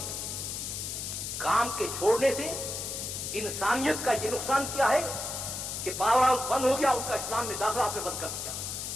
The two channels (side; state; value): left; noise; hiss, 5 dB below the sound